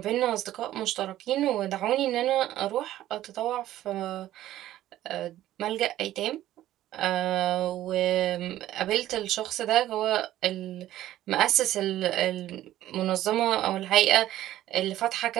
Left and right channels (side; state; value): left; quieter; 13.8 dB